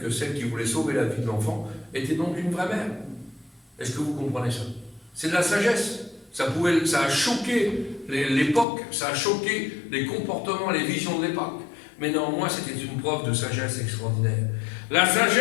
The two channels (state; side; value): drops out; right; at 8.7 s